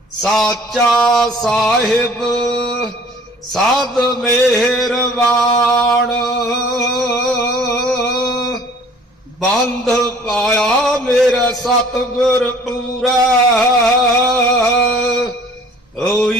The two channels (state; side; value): normal; both; correlation 0.52